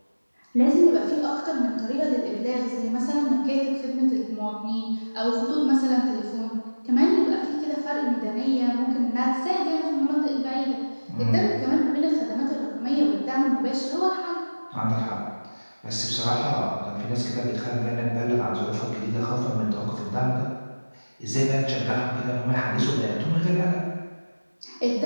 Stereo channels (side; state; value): both; inverted; correlation -1.00